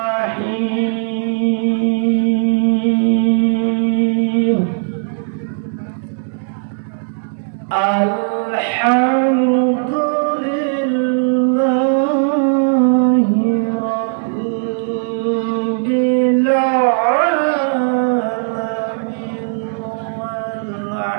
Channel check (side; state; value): left; silent; digital silence